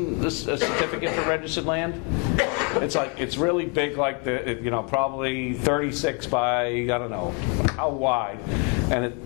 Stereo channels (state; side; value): quieter; right; 35.0 dB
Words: this certificate for registered land? It's really big, like probably 36 by, I don't know how wide, and